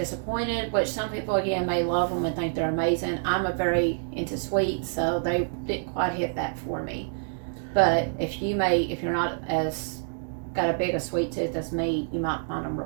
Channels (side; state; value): left; silent; digital silence